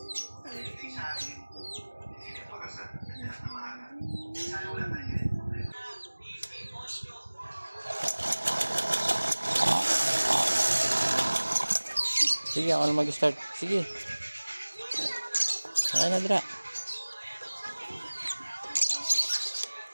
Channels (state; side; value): inverted; both; correlation -1.00